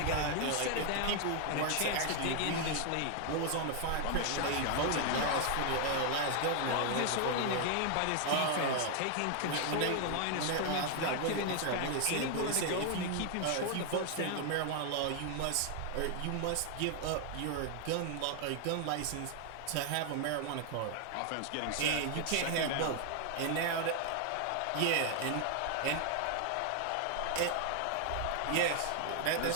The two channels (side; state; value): both; different; correlation 0.00